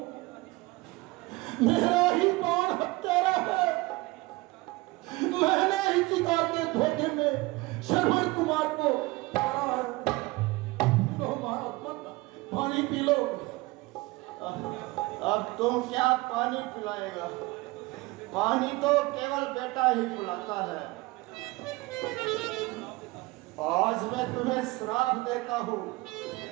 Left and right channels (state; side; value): quieter; left; 22.1 dB